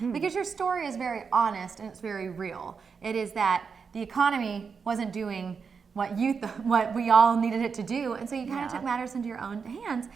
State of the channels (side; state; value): left; quieter; 5.7 dB